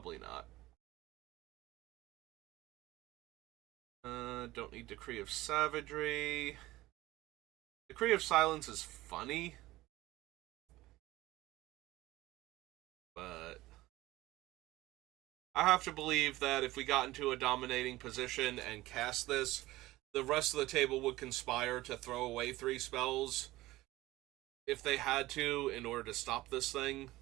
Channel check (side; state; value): left; quieter; 17.9 dB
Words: not. Don't need Decree of Savagery. Decree of Silence is funny, but I have to believe that if we got into a dominating position and cast this, the rest of the table would conspire to throw away 3 spells if they had to in order to stop this thing.